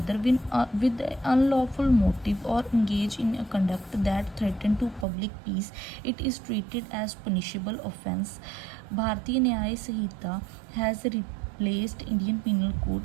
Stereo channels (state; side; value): drops out; left; at 5.1 s